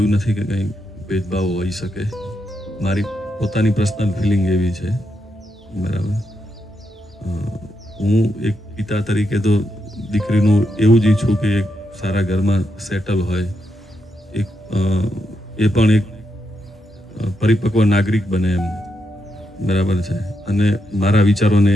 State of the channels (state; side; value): normal; both; correlation 0.83